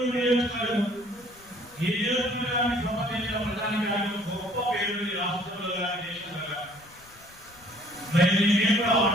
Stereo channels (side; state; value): left; noise; rumble, 26 dB below the sound